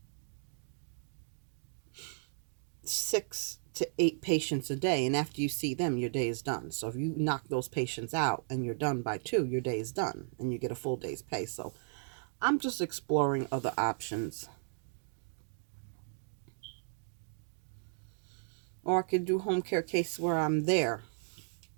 6 to 8 patients a day. And after you see them, your day is done. So if you knock those patients out and you're done by 2, your day is done and you get a full day's pay. So I'm just exploring other options. Or I could do home care case where I'm there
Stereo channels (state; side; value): silent; left; digital silence